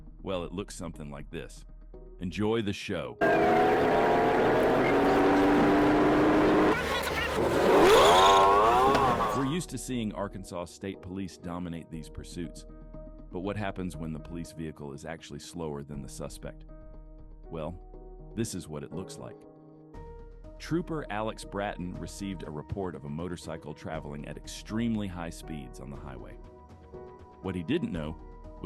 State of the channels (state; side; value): identical; both; correlation 1.00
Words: Well, it looks something like this. Enjoy the show. We're used to seeing Arkansas State Police dominate these pursuits. But what happens when the police vehicle is actually slower than the suspect? Well, this is what it looks like. Trooper Alex Bratton received a report of a motorcycle traveling at extremely high speeds on the highway. What he didn't know